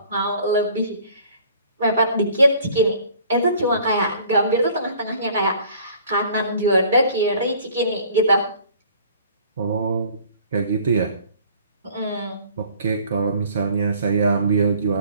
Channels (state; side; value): inverted; both; correlation -0.53